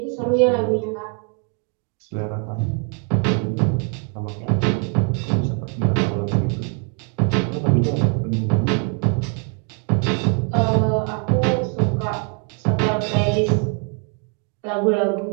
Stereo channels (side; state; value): left; quieter; 36.0 dB